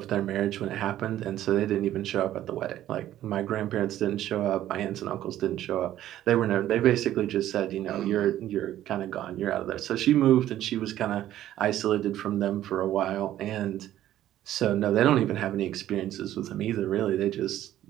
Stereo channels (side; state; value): left; quieter; 12.8 dB